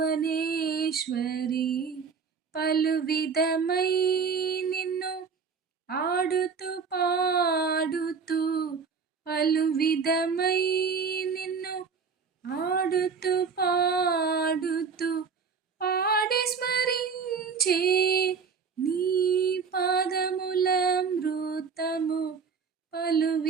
పలు విధమై నిన్ను ఆడుతూ పాడుతూ పలు విధమై నిన్ను ఆడుతూ పాడుతూ పాడి స్మరించే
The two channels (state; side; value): quieter; left; 5.6 dB